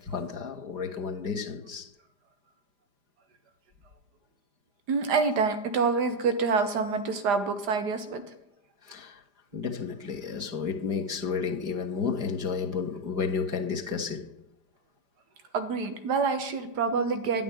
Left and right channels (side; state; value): left; late; 4.9 ms